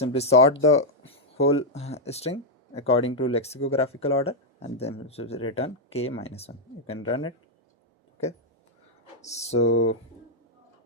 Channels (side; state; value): both; normal; correlation -0.02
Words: sort the whole string according to lexicographical order, and then it will return k minus 1. You can run it. Okay, so